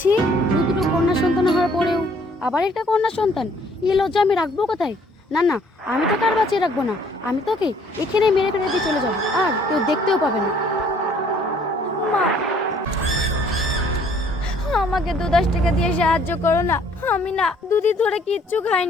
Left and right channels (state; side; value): normal; both; correlation 0.61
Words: দুটো কন্যা সন্তান হওয়ার পরেও আবার একটা কন্যা সন্তান, এই লজ্জা আমি রাখবো কোথায়? না না, আমি তোকে আর বাঁচিয়ে রাখবো না, আমি তোকে এখানে মেরে ফেলে দিয়ে চলে যাবো, আর কেউ দেখতেও পাবে না। মা, আমাকে 2-10 টাকা দিয়ে সাহায্য করো না, আমি না দুদিন ধরে কিচ্ছু